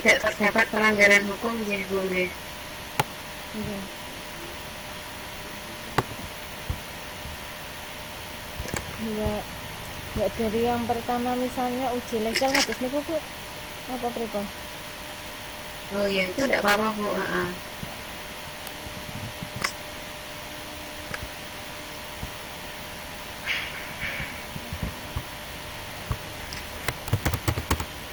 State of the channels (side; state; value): both; identical; correlation 1.00